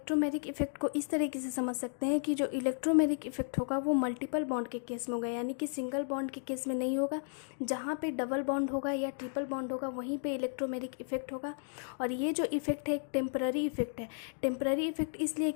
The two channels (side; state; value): right; silent; digital silence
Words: इफेक्ट को इस तरीके से समझ सकते हैं कि जो इलेक्ट्रोमेरिक इफेक्ट होगा वो मल्टीपल बॉन्ड के केस में होगा, यानी कि सिंगल बॉन्ड के केस में नहीं होगा। जहाँ पे डबल बॉन्ड होगा या ट्रिपल बॉन्ड होगा वहीं पे इलेक्ट्रोमेरिक इफेक्ट होगा। और ये जो इफेक्ट है एक टेम्पररी इफेक्ट है। टेम्पररी इफेक्ट इसलिए